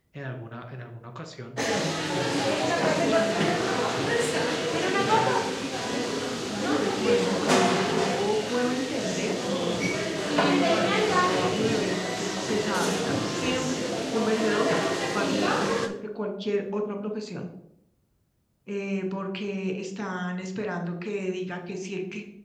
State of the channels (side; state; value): both; identical; correlation 1.00